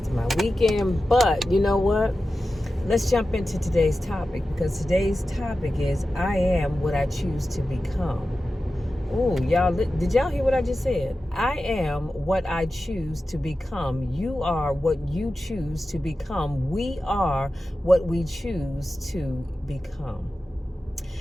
of my weekend. But you know what? Let's jump into today's topic, because today's topic is I am what I choose to become. Oh, y'all, did y'all hear what I just said? I am what I choose to become. You are what you choose to become. We are what we choose to become.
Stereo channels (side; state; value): both; normal; correlation 0.93